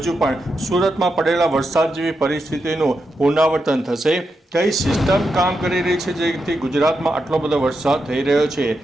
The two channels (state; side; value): normal; both; correlation 0.85